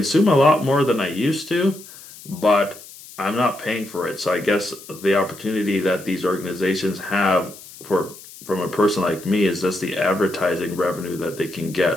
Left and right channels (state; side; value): noise; left; hiss, 18 dB below the sound